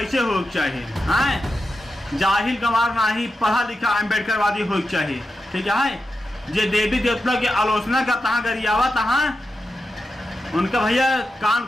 हो चाहिए, हैं जाहिल गंवार नहीं, पढ़ा लिखा अम्बेडकरवादी हो चाहिए। ठीक है, जे देवी देवता की आलोचना का तहाँ गरियावा तहाँ उनका भैया कान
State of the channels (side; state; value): both; normal; correlation 0.89